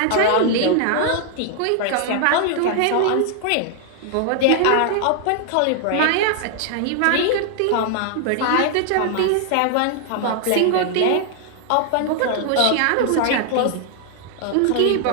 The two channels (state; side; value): different; both; correlation 0.00